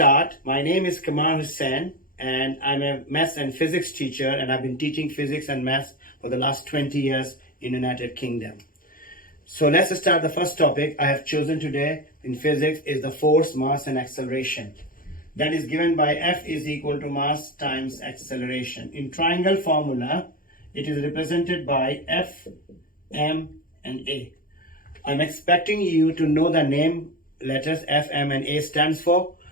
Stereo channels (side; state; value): right; late; 0.41 ms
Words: My name is Kamal Hussain and I'm a maths and physics teacher, and I've been teaching physics and maths for the last 20 years in the United Kingdom. So let's start. The first topic I have chosen today in physics is the force, mass, and acceleration. That is given by F is equal to mass times acceleration. In triangle formula, it is represented by F, M, and A. I'm expecting you to know the name letters F, M, and A stands for,